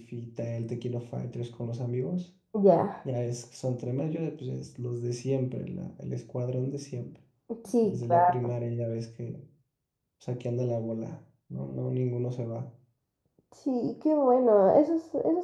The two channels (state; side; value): identical; both; correlation 1.00